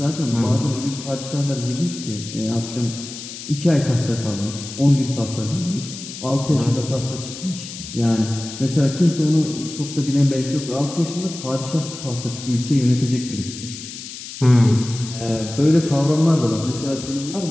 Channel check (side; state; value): left; noise; hiss, 11 dB below the sound